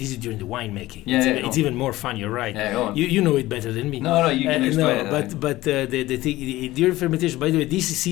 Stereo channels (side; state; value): right; quieter; 17.3 dB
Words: is during the winemaking. Yeah, it's even more fun. You're right. Yeah, go on. You know it better than me. No, you can explain it. But the thing during fermentation. By the way, this